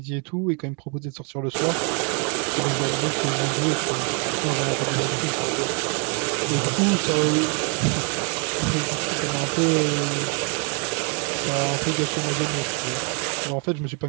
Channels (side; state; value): left; quieter; 34.8 dB